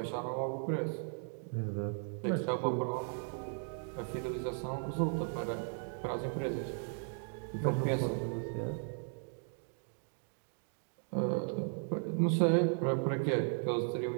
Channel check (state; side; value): silent; left; 53 dB below the other